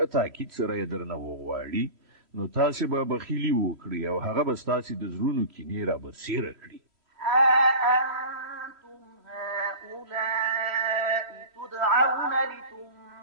تاکید سره یې درنه وغواړي نو تاسې به بخیلي وکړي او هغه به ستاسې د زړونو کینې رابرسېره کړي ها أنتم هؤلاء تدعون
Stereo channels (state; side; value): late; left; 3.1 ms